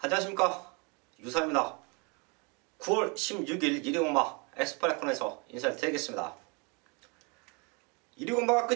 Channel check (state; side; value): quieter; left; 31.7 dB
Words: 안녕하십니까, 유사입니다. 9월 16일 1위 공마 엑스프레콘에서 인사를 드리겠습니다. 1위 공마가